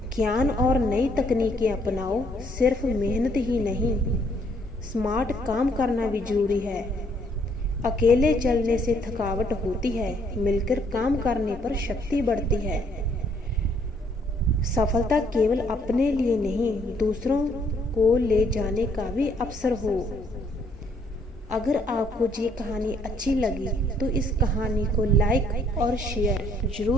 ज्ञान और नई तकनीकें अपनाओ। सिर्फ मेहनत ही नहीं, स्मार्ट काम करना भी जरूरी है। अकेले चलने से थकावट होती है, मिलकर काम करने पर शक्ति बढ़ती है। सफलता केवल अपने लिए नहीं, दूसरों को ले जाने का भी अवसर हो। अगर आपको ये कहानी अच्छी लगी तो इस कहानी को लाइक और शेयर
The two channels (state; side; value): normal; both; correlation 0.67